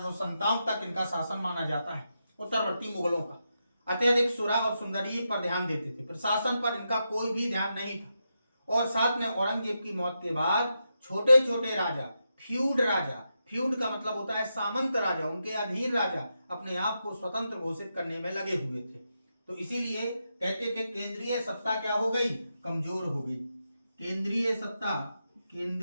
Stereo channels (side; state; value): both; inverted; correlation -0.86